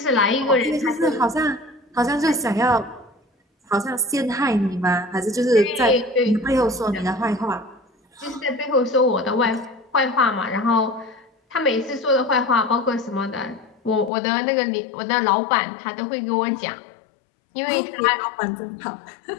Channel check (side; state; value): right; drops out; at 14.1 s